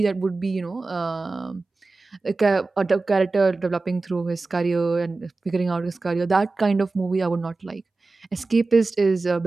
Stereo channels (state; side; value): quieter; left; 3.6 dB